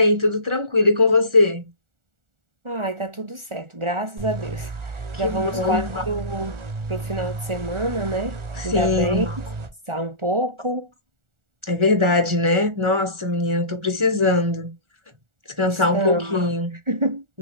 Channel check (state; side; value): late; left; 1.4 ms